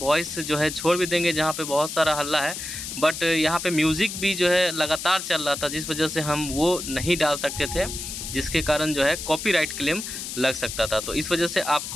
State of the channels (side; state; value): left; noise; hiss, 7 dB below the sound